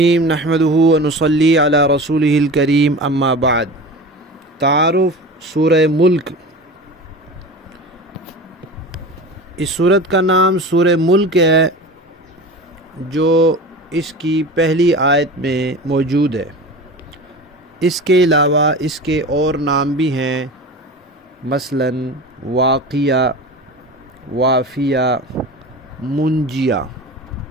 نحمدہ ونصلی علی رسولہ الکریم اما بعد۔ تعارف سورہ ملک۔ اس سورت کا نام سورہ ملک ہے جو اس کی پہلی آیت میں موجود ہے۔ اس کے علاوہ اس کے اور نام بھی ہیں، مثلاً واقیہ، وافیہ، منجیہ۔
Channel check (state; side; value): normal; both; correlation 0.33